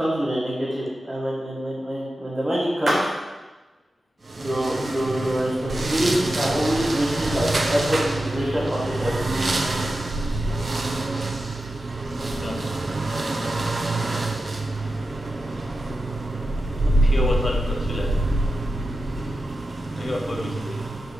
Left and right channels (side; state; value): both; normal; correlation 0.91